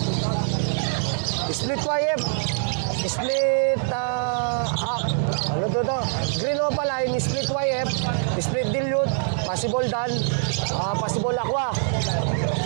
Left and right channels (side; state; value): left; silent; digital silence